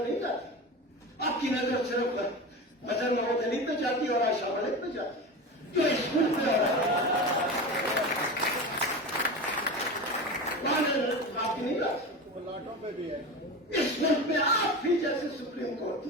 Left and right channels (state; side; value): normal; both; correlation 0.26